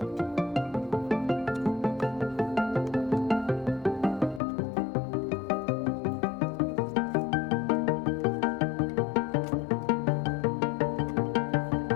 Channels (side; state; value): right; drops out; at 4.4 s